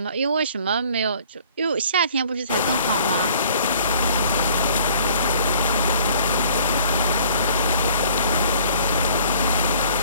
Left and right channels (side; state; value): both; inverted; correlation -0.54